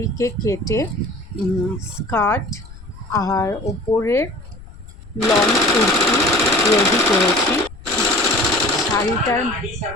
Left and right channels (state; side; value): noise; left; rumble, 18 dB below the sound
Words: কেটে স্কার্ট আর ওপরের লং কুর্তি রেডি করেছি। শাড়িটার